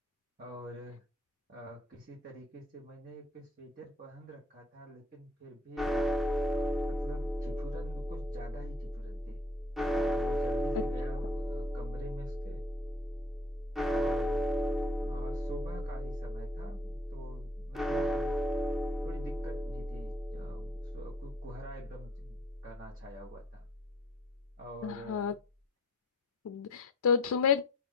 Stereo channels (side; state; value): both; normal; correlation 0.56